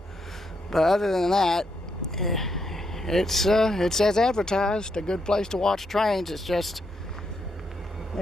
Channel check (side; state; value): both; normal; correlation 0.79